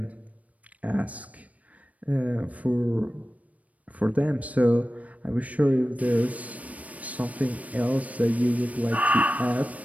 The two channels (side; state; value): left; late; 0.069 ms